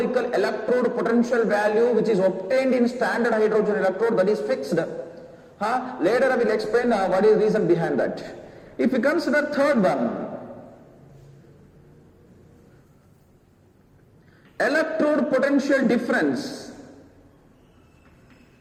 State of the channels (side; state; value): both; identical; correlation 1.00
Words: electrode potential value which is obtained in standard hydrogen electrode, that is fixed. Later I will explain what is the reason behind that. If you consider third one, electrode potential difference.